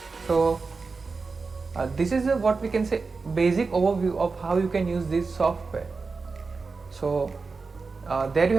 So this is what we can say basic overview of how you can use this software. So there you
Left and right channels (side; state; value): left; quieter; 4.4 dB